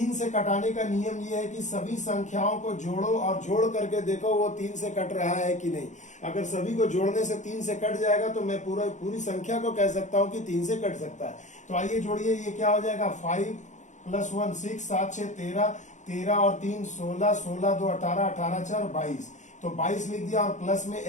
से कटाने का नियम ये है कि सभी संख्याओं को जोड़ो और जोड़ करके देखो वो 3 से कट रहा है कि नहीं। अगर सभी को जोड़ने से 3 से कट जाएगा तो मैं पूरी संख्या को कह सकता हूं कि 3 से कट सकता है। तो आइए जोड़िए, ये क्या हो जाएगा 5 + 1 6 7 6 13 13 और 3 16 16 2 18 18 4 22, तो 22 लिख दिया और प्लस में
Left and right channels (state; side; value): late; right; 0.35 ms